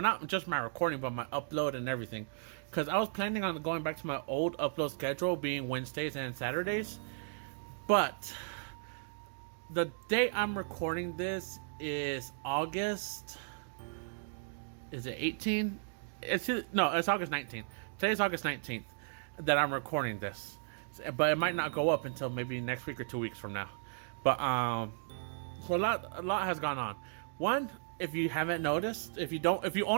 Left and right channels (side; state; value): left; silent; digital silence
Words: just my recording, but my upload and everything. Because I was planning on going back to my old upload schedule, being Wednesdays and Saturdays. But the day I'm recording this is August. Is it 18? It's August 19th. Today's August 19th that I'm recording this, but it might not go up until maybe next week or 2 weeks from now. But so a lot has gone on. One, if you haven't noticed, if you're